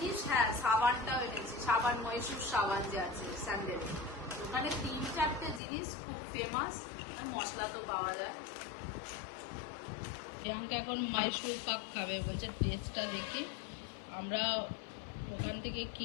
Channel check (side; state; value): right; drops out; at 5.6 s